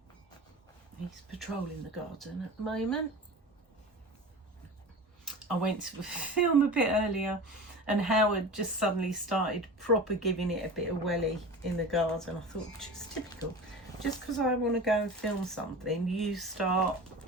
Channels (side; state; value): both; normal; correlation 0.33